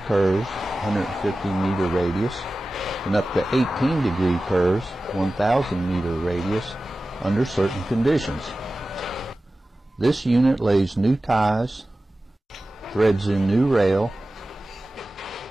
curves, 150-meter radius, and up to 18-degree curves, 1,000-meter radius, under certain conditions. This unit lays new ties, threads in new rail,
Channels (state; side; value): normal; both; correlation 0.96